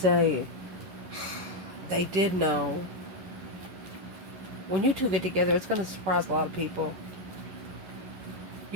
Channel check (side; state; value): left; late; 11 ms